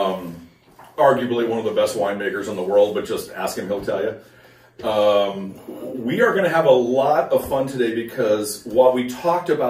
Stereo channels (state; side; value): identical; both; correlation 1.00